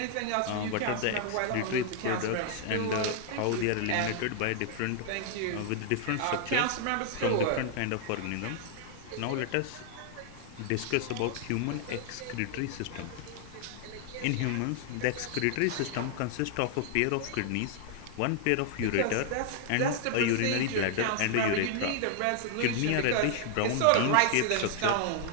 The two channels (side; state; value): both; different; correlation 0.00